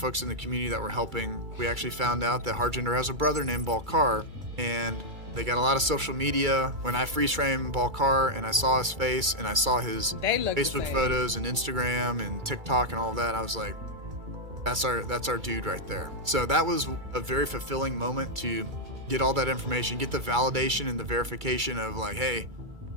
in the community that were helping. We actually found out that Harjinder has a brother named Balkar, and they got a lot of social media. When I freeze framed Balkar and I saw his face and I saw his They look the Facebook same. photos and Instagram and TikTok and all that, I was like, that's our dude right there. So that was a very fulfilling moment to get all that information, get the validation and the verification of like, hey,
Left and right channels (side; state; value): left; late; 2.3 ms